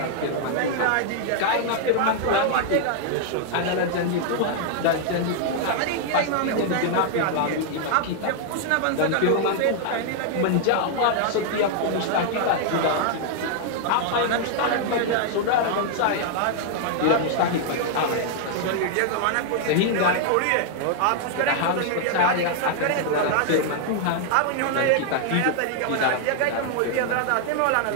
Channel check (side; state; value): both; different; correlation 0.00